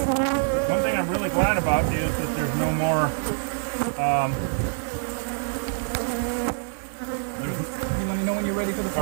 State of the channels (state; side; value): silent; left; digital silence